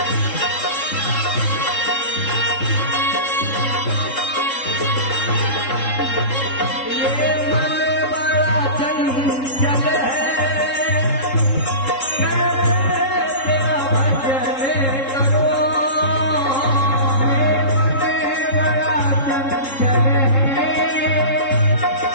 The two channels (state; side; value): late; right; 3.7 ms